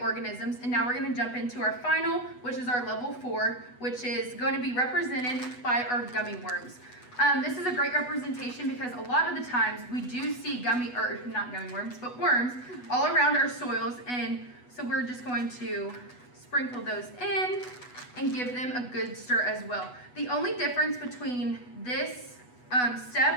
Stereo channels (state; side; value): late; right; 8.1 ms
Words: and now we're going to jump into our final, which is our level 4, which is going to be represented by our gummy worms. This is a great representation because a lot of the times we do see not gummy worms, but worms all around our soils, and so we're just going to sprinkle those in and give them a good stir as well. The only difference between this